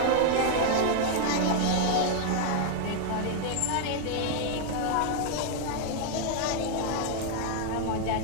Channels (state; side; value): different; both; correlation 0.00